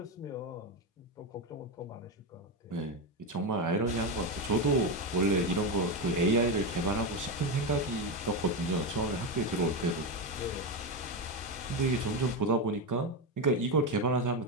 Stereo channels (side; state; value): both; normal; correlation 0.12